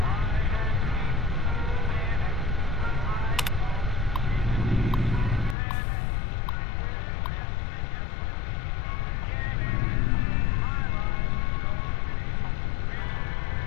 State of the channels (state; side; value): drops out; right; at 5.6 s